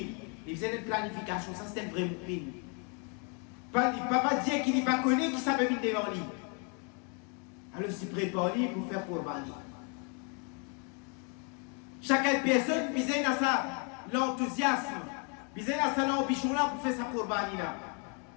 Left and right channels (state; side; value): quieter; right; 35.9 dB